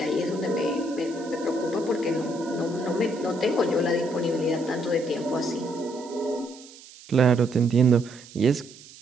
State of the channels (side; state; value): right; noise; hiss, 20 dB below the sound